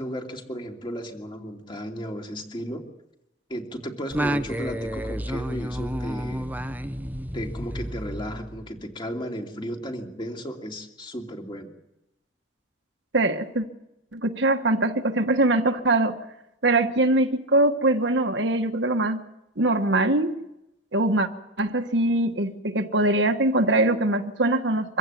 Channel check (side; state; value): both; normal; correlation 0.18